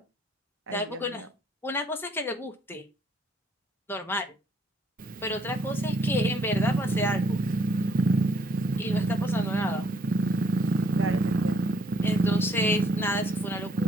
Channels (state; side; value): normal; both; correlation 0.66